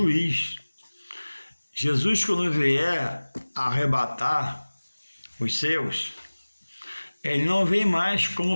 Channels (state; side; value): inverted; both; correlation -1.00